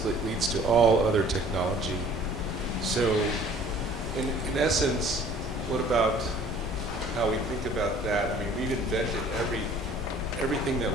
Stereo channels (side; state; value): both; normal; correlation 0.52